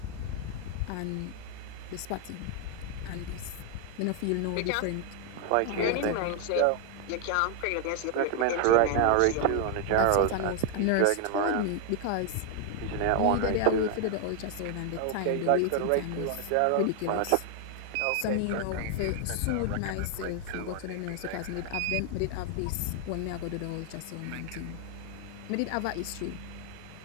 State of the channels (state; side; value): different; both; correlation 0.00